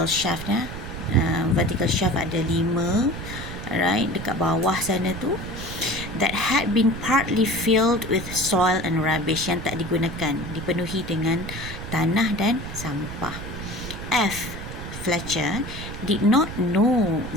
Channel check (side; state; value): right; noise; rumble, 9 dB below the sound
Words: shaft ada 5, right, dekat bawah sana tu, that had been partly filled with soil and rubbish, yang tak digunakan, dipenuhi dengan tanah dan sampah. F, Fletcher, did not know